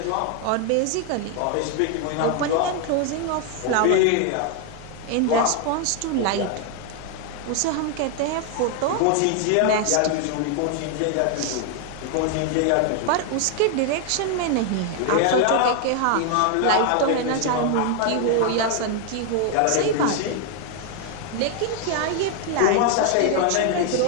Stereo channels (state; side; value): different; both; correlation 0.01